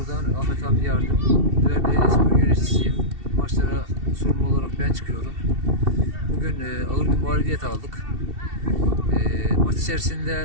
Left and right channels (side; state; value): left; late; 2.7 ms